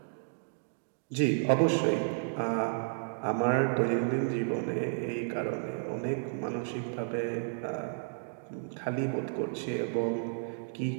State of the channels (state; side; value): silent; left; digital silence